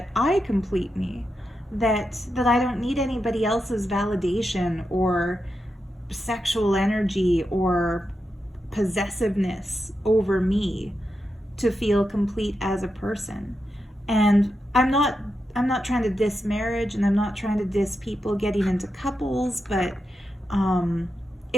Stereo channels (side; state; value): both; normal; correlation 0.87